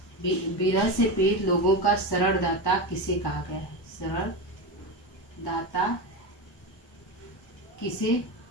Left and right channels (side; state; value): right; late; 1.1 ms